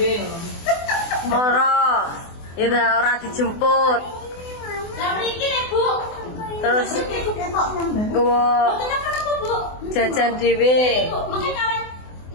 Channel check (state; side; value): late; right; 24 ms